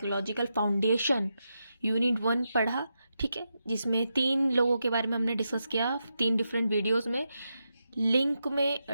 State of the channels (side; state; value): both; inverted; correlation -0.86